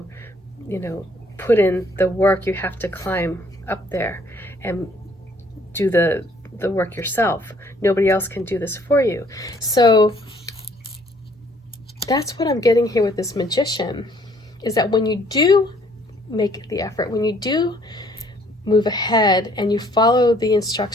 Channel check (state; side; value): normal; both; correlation 0.62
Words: put in the work. You have to climb up there. and do the work yourself. Nobody else can do this for you. So that's what I'm getting here with this magician, is that when you do make the effort, when you do move ahead and you follow the